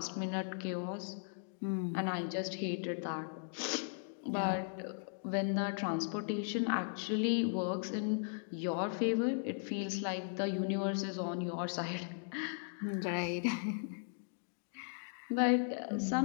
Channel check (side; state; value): right; silent; digital silence